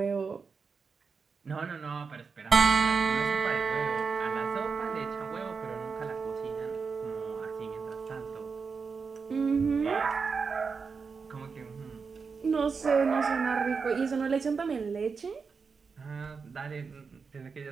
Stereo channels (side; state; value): left; quieter; 5.2 dB